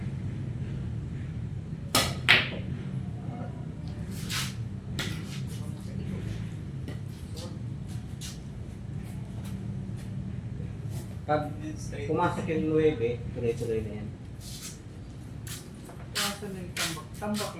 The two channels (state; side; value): identical; both; correlation 1.00